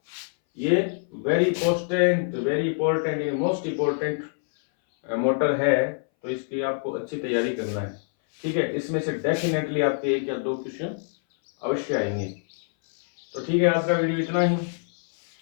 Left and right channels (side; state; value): right; silent; 60 dB below the other